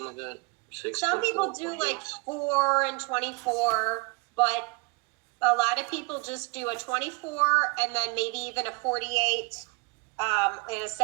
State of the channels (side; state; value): left; quieter; 29.5 dB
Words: like that. 6. Some 24, people do 48. like 4 and 24, but a lot of people just do a 24 and then maybe even a 48 and a